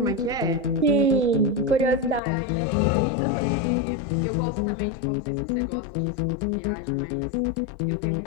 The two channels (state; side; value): drops out; right; at 2.2 s